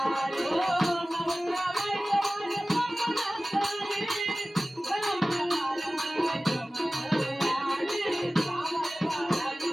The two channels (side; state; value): both; normal; correlation 0.97